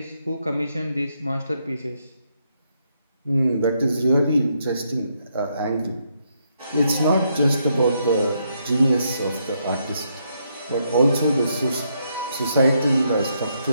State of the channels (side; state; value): both; inverted; correlation -0.77